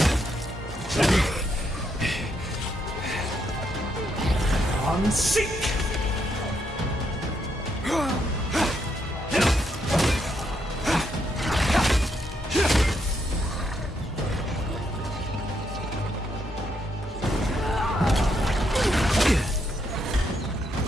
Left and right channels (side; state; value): both; normal; correlation 0.77